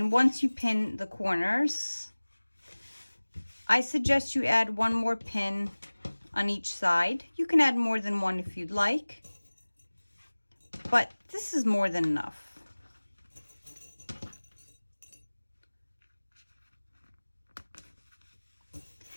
once you pin the corners, I suggest you add one more pin on each side. You can add more than one if you'd like, but this is more than enough.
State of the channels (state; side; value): inverted; both; correlation -1.00